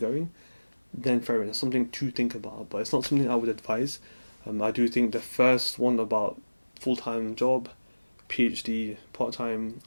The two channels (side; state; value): both; inverted; correlation -1.00